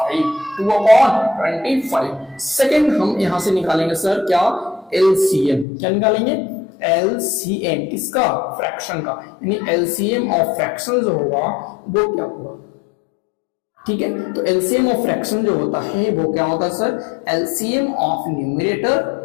2/25। सेकंड हम यहां से निकालेंगे सर क्या, एलसीएम, क्या निकालेंगे एलसीएम किसका, फ्रैक्शन का, यानी एलसीएम ऑफ फ्रैक्शन जो होगा वो क्या होगा, ठीक है। तो एलसीएम ऑफ फ्रैक्शन जो होता है वो क्या होता है sir, LCM of numerator,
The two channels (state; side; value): drops out; right; at 5.7 s